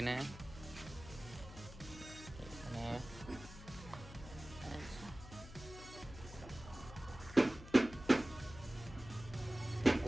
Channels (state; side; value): noise; left; hum, 14 dB below the sound